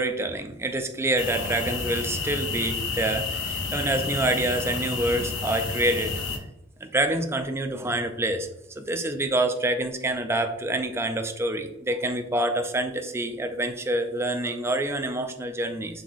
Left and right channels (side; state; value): both; normal; correlation 0.38